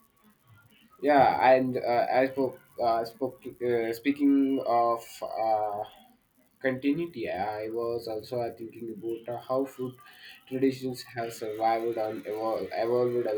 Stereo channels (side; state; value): both; identical; correlation 1.00